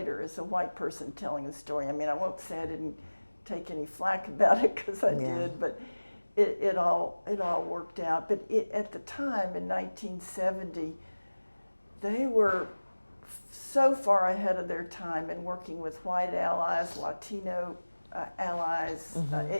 as a white person telling the story, I won't say I didn't take any flack about it, because I did, but it all worked out. But at the time in 1970, they were so far ahead of their time in working with white allies, Latino allies,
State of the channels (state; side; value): inverted; both; correlation -1.00